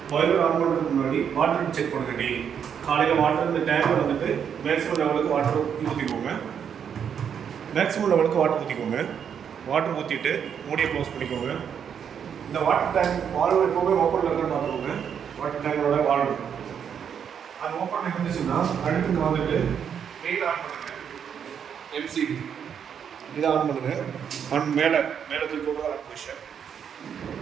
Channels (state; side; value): quieter; left; 7.9 dB